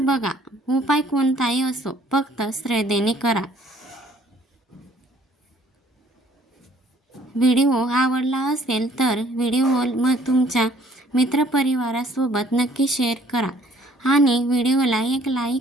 उपाय कोणताही असो, फक्त श्रद्धेने करा. व्हिडिओ आवडला असेल तर व्हिडिओ तुमच्या मित्रपरिवारासोबत नक्की शेअर करा आणि व्हिडिओला एक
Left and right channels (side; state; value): both; normal; correlation 0.60